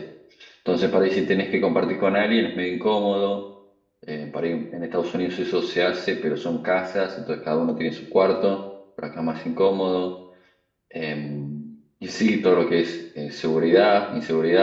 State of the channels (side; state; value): both; identical; correlation 1.00